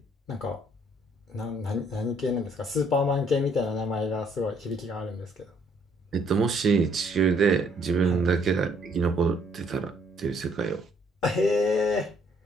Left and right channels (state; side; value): normal; both; correlation 0.66